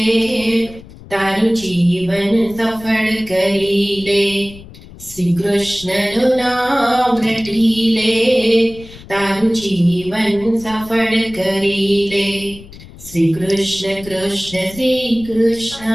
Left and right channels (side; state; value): left; noise; rumble, 18 dB below the sound